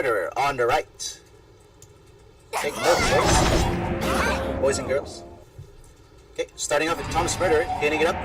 on the right. Take note, boys and girls. Okay, starting off with Tom's Murderer, hitting it up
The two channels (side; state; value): both; identical; correlation 1.00